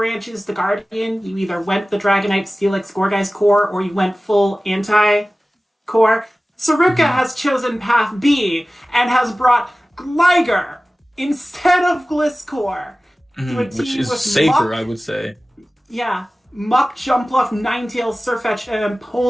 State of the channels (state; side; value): normal; both; correlation 0.97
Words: to Guardian? You either went the Dragonite, Steelix, Gourgeist core, or you went full anti-core. Saruka has chosen path B and has brought Gligar instead of Gliscor. Which is safer, I would say. Yeah. Muck, Jumpluff, Ninetales, Sirfetch'd, and